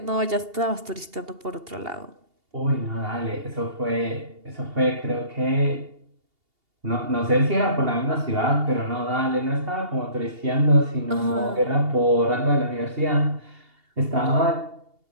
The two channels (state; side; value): late; left; 2.8 ms